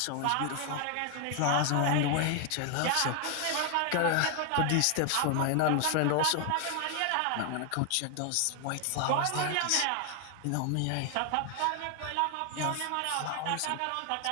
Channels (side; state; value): both; different; correlation 0.00